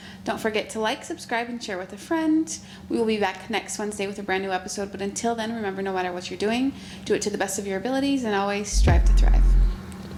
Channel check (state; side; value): identical; both; correlation 1.00